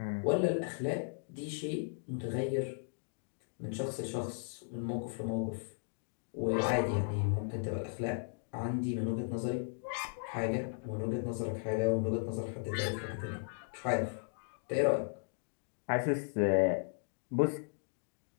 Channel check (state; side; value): silent; right; digital silence